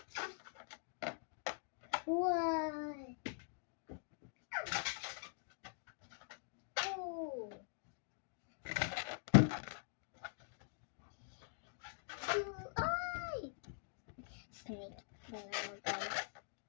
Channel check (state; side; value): silent; right; digital silence